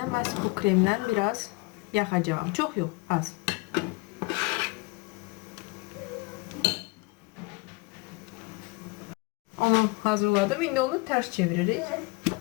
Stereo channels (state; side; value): quieter; right; 25.6 dB